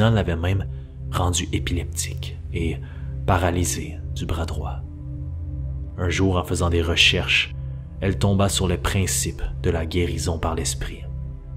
l'avait même rendue épileptique et paralysée du bras droit. Un jour, en faisant des recherches, elle tomba sur le principe de la guérison par l'esprit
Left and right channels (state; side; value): identical; both; correlation 1.00